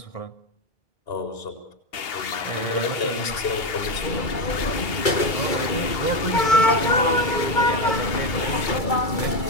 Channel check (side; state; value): right; late; 2.8 ms